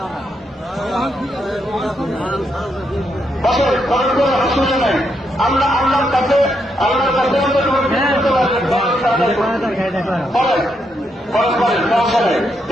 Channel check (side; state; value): both; normal; correlation 0.79